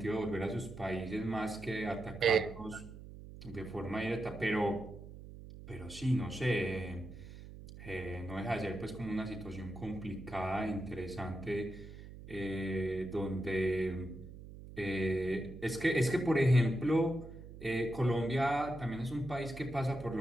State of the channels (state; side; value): noise; right; hum, 14 dB below the sound